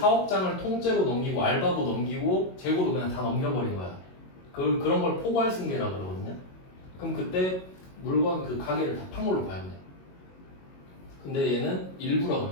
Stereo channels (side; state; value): right; late; 22 ms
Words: 통째로 넘기고 알바도 넘기고 재고도 그냥 다 넘겨버린 거야. 그런 걸 포괄 승계라 그러거든요. 그럼 그때 물건 그 가게를 다 판 걸로 봐야 돼. 근데 얘는 일부라